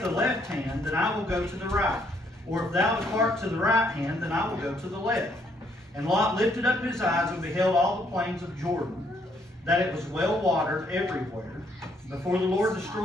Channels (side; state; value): both; normal; correlation 0.70